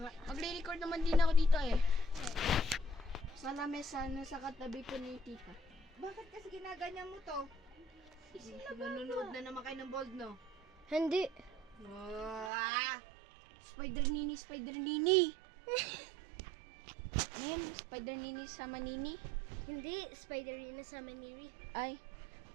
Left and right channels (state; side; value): drops out; left; at 12.5 s